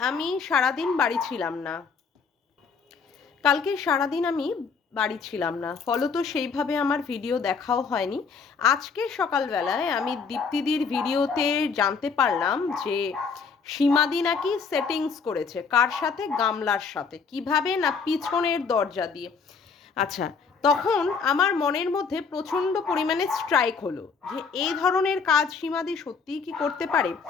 আমি সারাদিন বাড়ি ছিলাম না। বাড়ি ছিলাম না, ফলত সেইভাবে আমার ভিডিও দেখাও হয়নি। আজকে সকালবেলায় আমি দীপ্তিদির ভিডিওতে জানতে পারলাম যে সীমাদি নাকি সেটিংস করেছে। কার সাথে? গামলার সাথে। কিভাবে? না পিছনের দরজা দিয়ে। আচ্ছা, তখন আমার মনের মধ্যে প্রচণ্ড পরিমাণে স্ট্রাইক হলো যে এই ধরনের কাজ সীমাদি সত্যিই কি করতে পারে।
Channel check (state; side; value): quieter; right; 5.5 dB